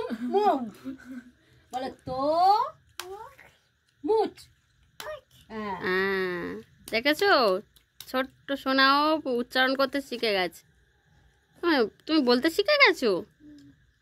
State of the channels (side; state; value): both; identical; correlation 1.00